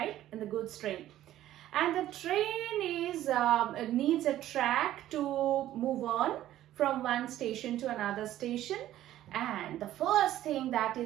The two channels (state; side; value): quieter; left; 13.3 dB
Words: In the goods train. And the train is needs a track to move on from one station to another station, and the first thing that